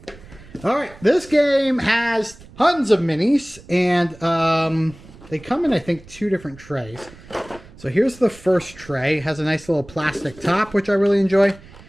All right. This game has tons of minis. And they come in, I think, 2 different trays. So here's the first tray. It has a nice little plastic top, which I really enjoy.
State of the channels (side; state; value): right; noise; rumble, 21 dB below the sound